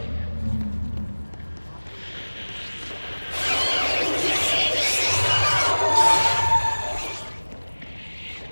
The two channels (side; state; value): both; inverted; correlation -1.00